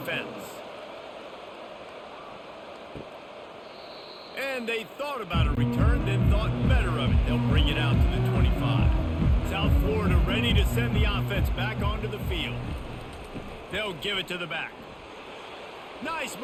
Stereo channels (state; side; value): identical; both; correlation 1.00